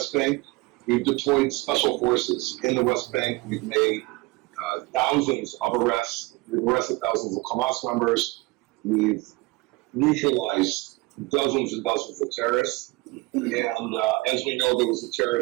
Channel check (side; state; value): left; quieter; 23.2 dB